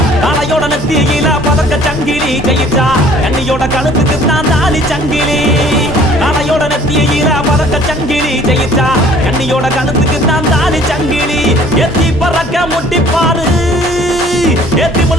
காளையோட நெத்தியில பதக்க சங்கிலி ஜெயிச்சா கண்ணியோட கழுத்துக்கு தான் தாலி சங்கிலி காளையோட நெத்தியில பதக்க சங்கிலி ஜெயிச்சா கண்ணியோட கழுத்துக்கு தான் தாலி சங்கிலி எத்தி பறக்க முட்டி பாரு எத்தி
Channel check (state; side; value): normal; both; correlation 0.54